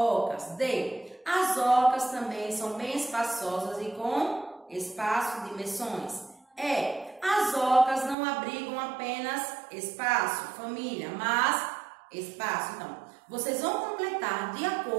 D, as ocas também são bem espaçosas e com espaço de dimensões. E, as ocas não abrigam apenas espaço, família, mas espaço. Então, vocês vão completar de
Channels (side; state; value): left; drops out; at 8.2 s